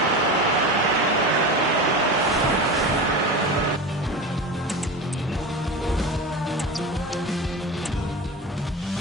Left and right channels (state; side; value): normal; both; correlation 0.27